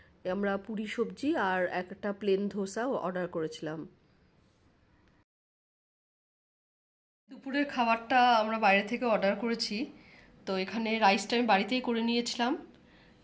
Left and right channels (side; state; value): both; identical; correlation 1.00